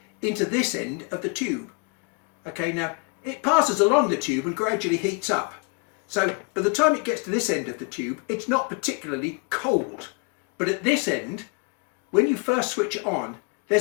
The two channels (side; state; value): right; quieter; 32.2 dB